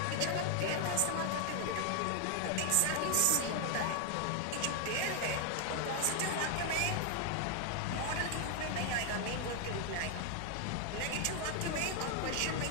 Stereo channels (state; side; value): different; both; correlation 0.01